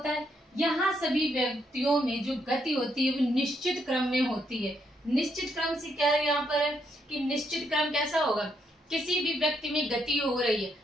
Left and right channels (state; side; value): normal; both; correlation 0.76